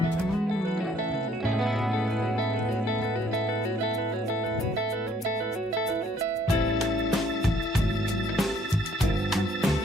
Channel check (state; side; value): normal; both; correlation 0.64